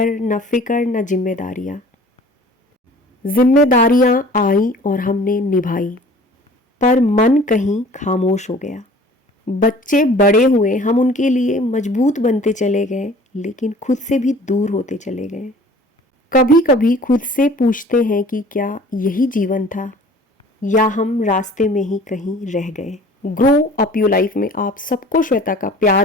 न फिक्र न जिम्मेदारियां। जिम्मेदारियां आई और हमने निभाई, पर मन कहीं खामोश हो गया। बच्चे बड़े हुए, हम उनके लिए मजबूत बनते चले गए, लेकिन खुद से भी दूर होते चले गए। कभी कभी खुद से पूछते हैं कि क्या यही जीवन था, या हम रास्ते में ही कहीं रह गए। ग्रो अप योर लाइफ में आप सबको श्वेता का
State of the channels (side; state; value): both; normal; correlation 0.48